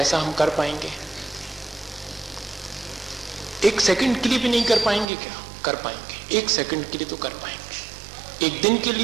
हम कर पाएंगे? एक सेकंड के लिए भी नहीं कर पाएंगे? क्या कर पाएंगे? एक सेकंड के लिए तो कर पाएंगे, एक दिन के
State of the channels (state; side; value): drops out; left; at 5.1 s